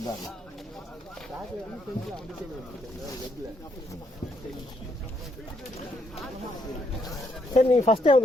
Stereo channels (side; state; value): both; normal; correlation 0.74